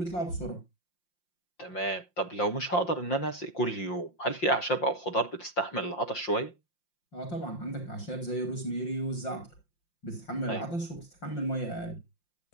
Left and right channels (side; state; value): right; late; 5.7 ms